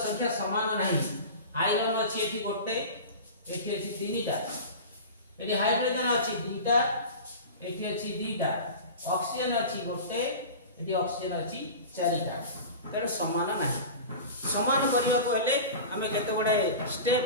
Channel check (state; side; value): inverted; both; correlation -0.33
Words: संख्या समान नहीं आयरन अछि एठी गोटे एठी अछि तीनटा एठी हाइड्रोजन अछि दुईटा एठी अछि दुईटा ऑक्सीजन अछि गोटे एठी ऑक्सीजन अछि चारिटा तेणु समान नाही समान करिया को हेले हमें केते बडे स्टेप